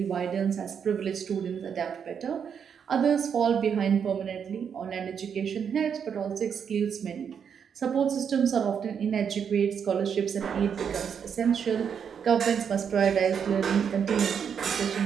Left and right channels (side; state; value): left; quieter; 7.4 dB